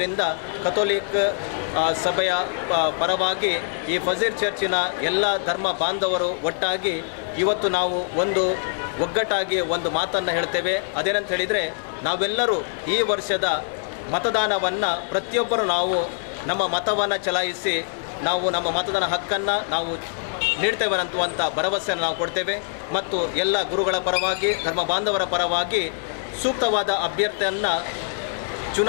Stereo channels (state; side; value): silent; right; digital silence